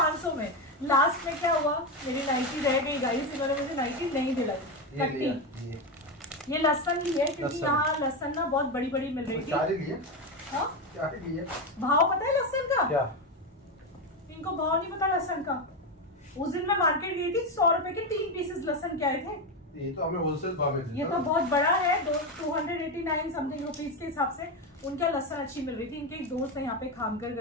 में। लास्ट में क्या हुआ, मेरी नाइटी रह गई गाइस, इन्होंने मुझे नाइटी नहीं दिलाई। ये लहसन ली है क्योंकि यहाँ लहसन ना बहुत बड़ी बड़ी मिल रही थी। भाव पता है लहसन का? क्या? इनको भाव नहीं पता लहसन का। उस दिन मैं मार्केट गई थी, 100 रुपए के 3 पीसेस लहसन के आए थे। ये तो हमें होलसेल भाव में, ये तो बहुत बड़ा है, 289 समथिंग रुपीज के हिसाब से उनका लहसन अच्छी मिल रही थी। इनके एक दोस्त है यहाँ पे खामकर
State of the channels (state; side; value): normal; both; correlation 0.12